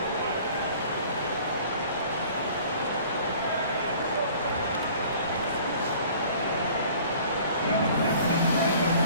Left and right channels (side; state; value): both; inverted; correlation -0.50